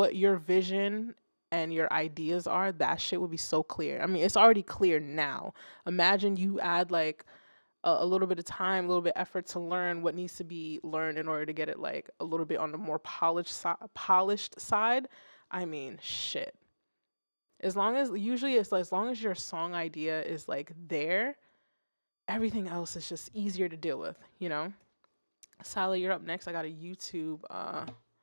your vision and your ideas are, that shit would be so clear. I mean, it's already clear now. Imagine you add like a little bit of time, a little bit of effort to learn what needs to be learned in order to get it like a little bit on the more polished side. I mean, shit. As long as usually it's like, as long as your song idea is like there, everything else is just easier to deal with, you know? Sally, you're up next. I got a YouTube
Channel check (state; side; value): inverted; both; correlation -1.00